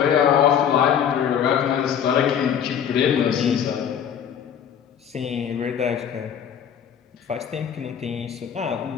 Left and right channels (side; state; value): right; quieter; 8.5 dB